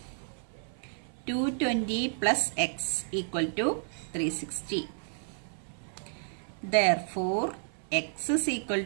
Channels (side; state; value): left; silent; 57 dB below the other